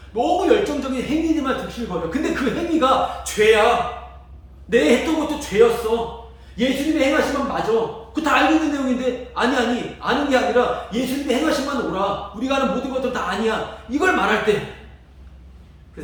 너무 열정적인 행위들만 득실을 거려. 근데 그 행위가 죄야. 내 했던 것도 죄였어. 예수님의 행하심만 맞아. 그거 다 알고 있는 내용인데 아니 아는 게 아니라 예수님의 행하심만 오라. 우리가 하는 모든 것들 다 아니야. 이걸 말할 때 그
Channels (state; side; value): identical; both; correlation 1.00